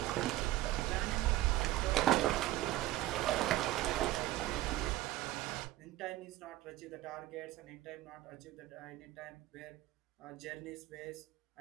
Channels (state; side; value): quieter; left; 15.8 dB